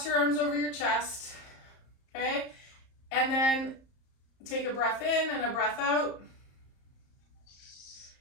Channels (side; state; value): right; late; 34 ms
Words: your arms over your chest, okay? And then take a breath in and a breath out.